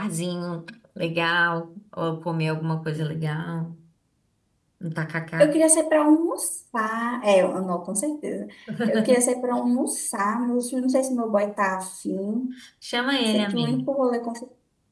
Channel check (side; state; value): both; identical; correlation 1.00